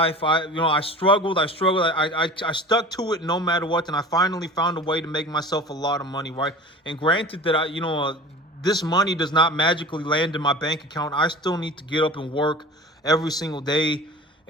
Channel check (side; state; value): both; normal; correlation 0.39